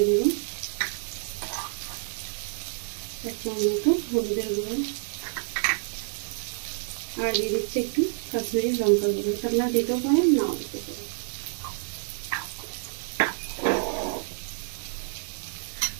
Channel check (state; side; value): silent; left; 59 dB below the other